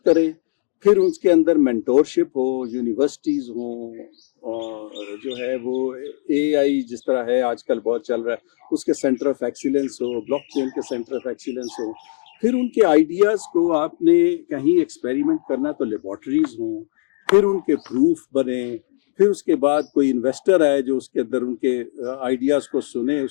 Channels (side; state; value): right; silent; digital silence